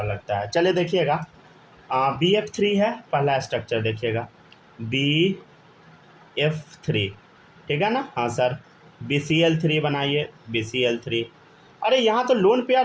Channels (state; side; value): identical; both; correlation 1.00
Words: लगता है। चलिए देखिएगा, BF3 है पहला स्ट्रक्चर, देखिएगा BF3, ठीक है ना? हाँ सर, BCl3 बनाइए, BCl3। अरे यहाँ तो लोन